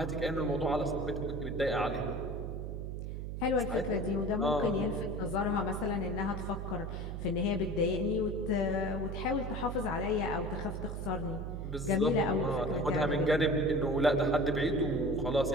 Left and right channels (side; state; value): right; noise; hum, 5 dB below the sound